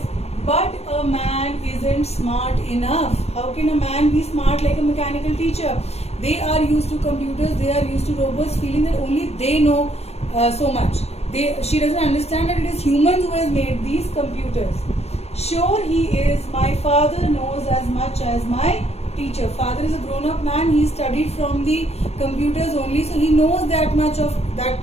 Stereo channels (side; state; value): right; late; 0.30 ms